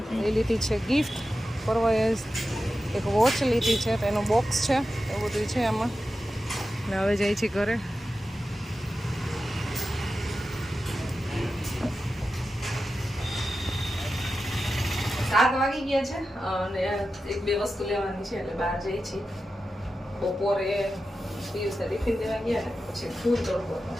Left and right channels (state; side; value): normal; both; correlation 0.92